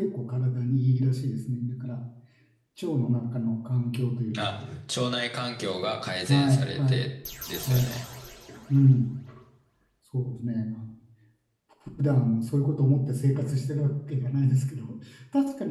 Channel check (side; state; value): both; identical; correlation 1.00